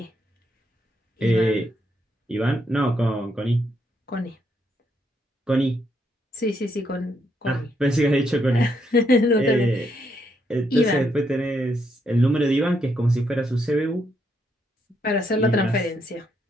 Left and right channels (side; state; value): both; normal; correlation 0.76